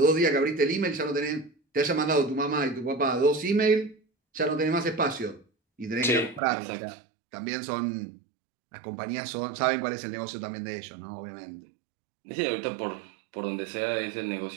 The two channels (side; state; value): left; drops out; at 6.4 s